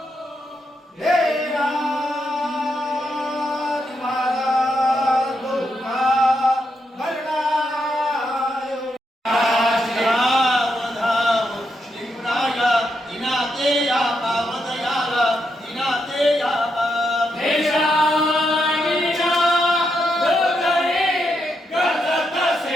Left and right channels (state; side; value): normal; both; correlation 0.82